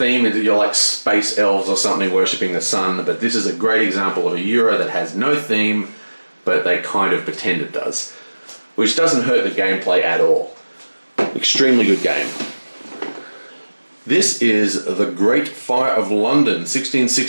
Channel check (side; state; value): both; inverted; correlation -1.00